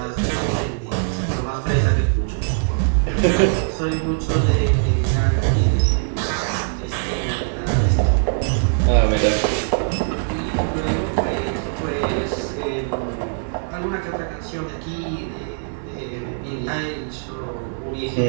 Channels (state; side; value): silent; left; digital silence